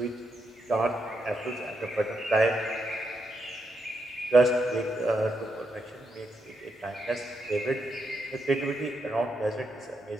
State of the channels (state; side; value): normal; both; correlation 0.82